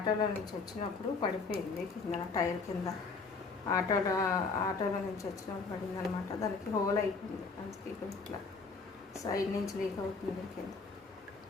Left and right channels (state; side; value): quieter; right; 4.4 dB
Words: నుంచి వచ్చినప్పుడు పడిపోయింది కింద, టైర్ కింద. ఆటోలో నుంచి వచ్చినప్పుడు పడింది అనమాట. దానికి హోల్ అయిపోయింది, అందుకే ఇట్లా సైడ్ నుంచి లీక్ అవుతుంది కింద.